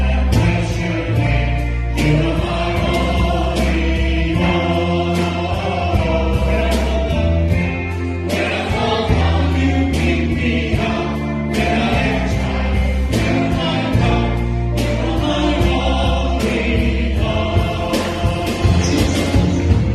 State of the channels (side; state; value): both; identical; correlation 1.00